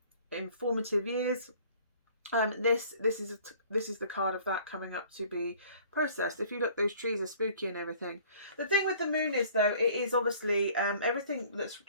in formative years. This is the card of that coming up to be processed. If you look, those trees are spooky and everything. The thing with the moon is, though, it is obviously everything that's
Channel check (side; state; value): both; inverted; correlation -0.53